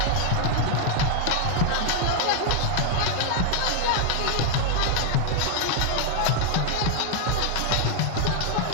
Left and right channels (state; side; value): different; both; correlation 0.00